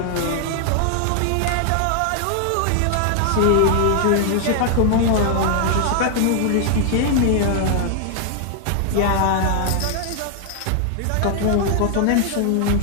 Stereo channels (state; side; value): different; both; correlation 0.00